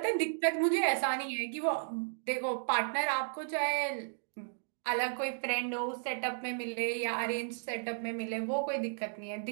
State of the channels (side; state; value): left; silent; digital silence